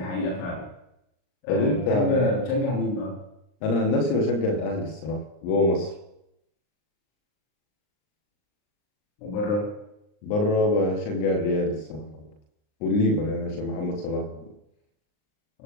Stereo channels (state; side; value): late; right; 39 ms